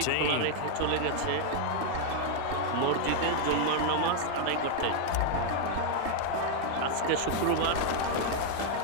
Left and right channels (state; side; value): different; both; correlation 0.00